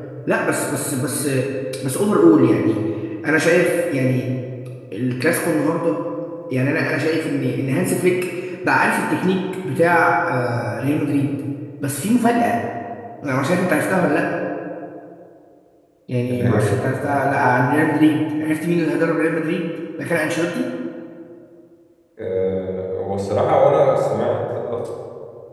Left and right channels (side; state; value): both; identical; correlation 1.00